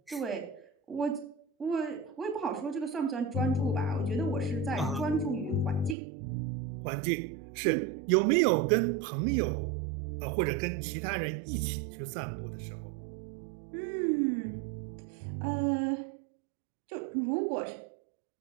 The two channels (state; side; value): drops out; left; at 6.0 s